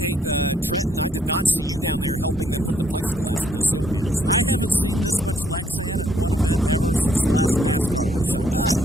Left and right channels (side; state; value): both; normal; correlation 0.69